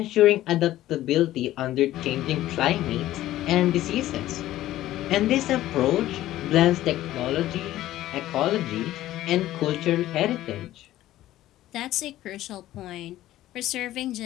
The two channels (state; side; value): quieter; right; 14.5 dB